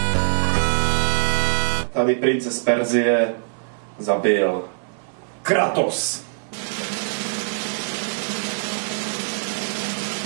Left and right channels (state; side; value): silent; left; digital silence